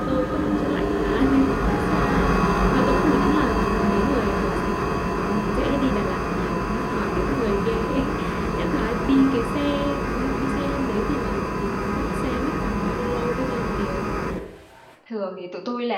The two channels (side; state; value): both; identical; correlation 1.00